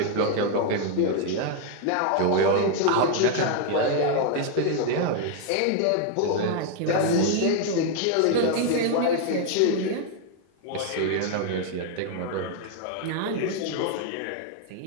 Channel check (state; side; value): different; both; correlation 0.00